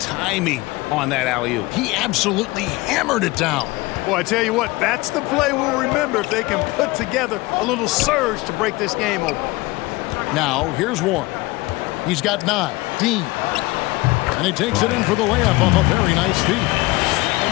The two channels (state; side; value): quieter; right; 21.3 dB